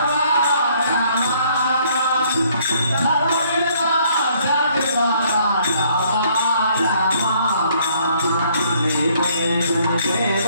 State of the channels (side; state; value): both; inverted; correlation -0.64